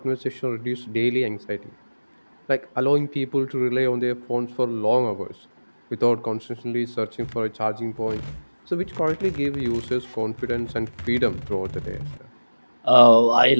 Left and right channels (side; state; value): both; inverted; correlation -1.00